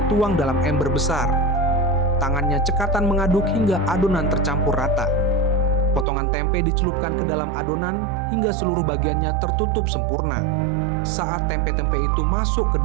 tuang dalam ember besar. Tangannya cekatan mengaduk hingga adonan tercampur rata. Potongan tempe dicelupkan ke dalam adonan hingga seluruh bagiannya tertutup sempurna. Saat tempe-tempe itu masuk ke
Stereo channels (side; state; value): left; drops out; at 6.1 s